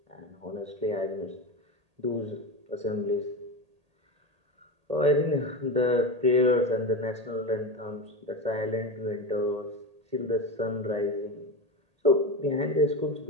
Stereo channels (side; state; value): left; late; 1.8 ms